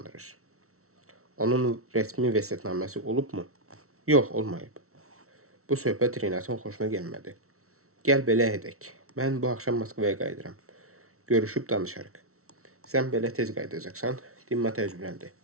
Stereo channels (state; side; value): late; left; 0.63 ms